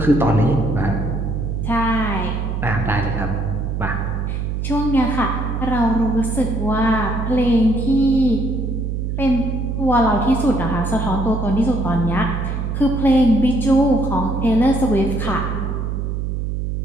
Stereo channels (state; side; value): noise; right; hum, 2 dB below the sound